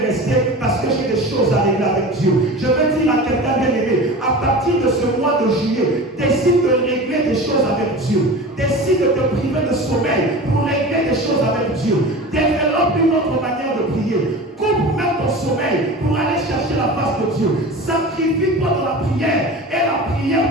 rester parce que j'ai des choses à régler avec Dieu. Je veux dire à quelqu'un bien-aimé, à partir de ce mois de juillet, décide de régler des choses avec Dieu. Décide de te priver de sommeil pour régler des choses avec Dieu. Développe une autre manière de prier. Coupe même ton sommeil pour aller chercher la face de Dieu. Sacrifie-toi dans la prière et la prière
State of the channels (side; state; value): both; normal; correlation 0.34